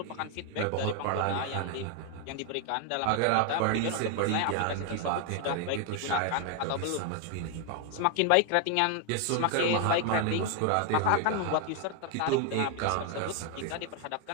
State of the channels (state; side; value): different; both; correlation 0.00